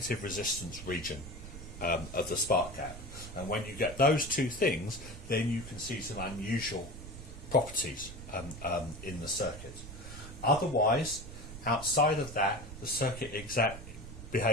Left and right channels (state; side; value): noise; right; rumble, 12 dB below the sound